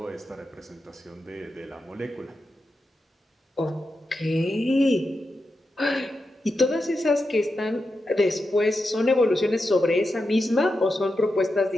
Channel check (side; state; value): both; normal; correlation 0.88